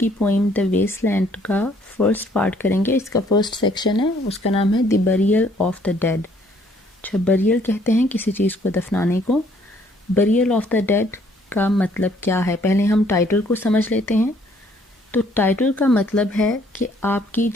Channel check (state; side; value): normal; both; correlation 0.63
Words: پوئم دا ویسٹ لینڈ کا فرسٹ پارٹ کریں گے. اس کا فرسٹ سیکشن ہے, اس کا نام ہے دی بریل آف دا ڈیڈ. اچھا, بریل کہتے ہیں کسی چیز کو دفنانے کو. بریل آف دا ڈیڈ کا مطلب کیا ہے, پہلے ہم ٹائٹل کو سمجھ لیتے ہیں. تو ٹائٹل کا مطلب ہے کہ آپ کی